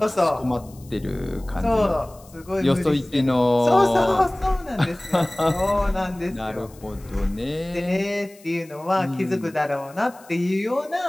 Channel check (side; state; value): left; noise; hiss, 25 dB below the sound